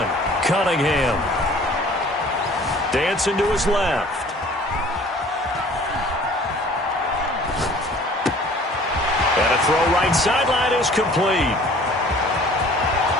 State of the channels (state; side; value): normal; both; correlation 0.50